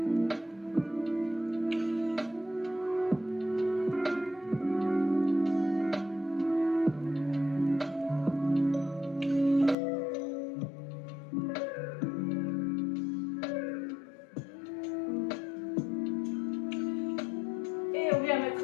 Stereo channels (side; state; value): right; drops out; at 9.8 s